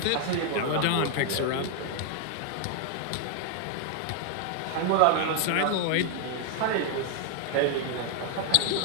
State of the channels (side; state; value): both; different; correlation 0.00